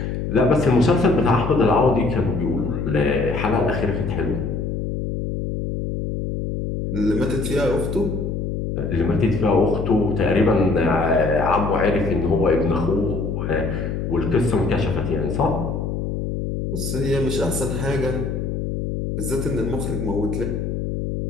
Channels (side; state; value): left; noise; hum, 3 dB below the sound